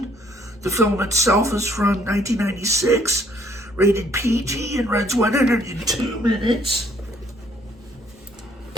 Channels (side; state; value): both; normal; correlation 0.65